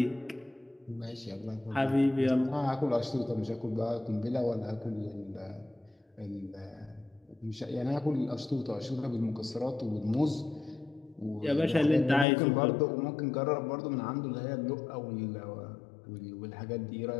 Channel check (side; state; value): right; drops out; at 12.2 s